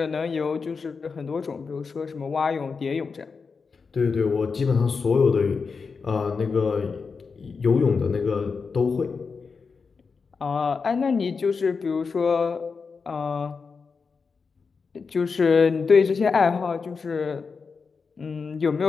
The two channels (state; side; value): quieter; right; 5.1 dB